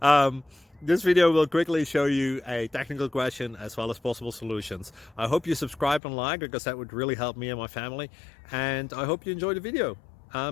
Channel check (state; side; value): drops out; right; at 6.0 s